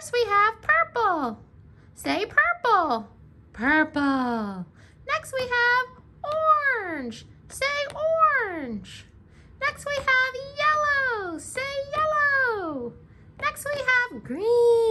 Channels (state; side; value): identical; both; correlation 1.00